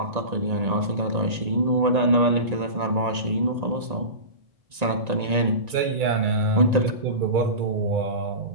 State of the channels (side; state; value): left; late; 1.9 ms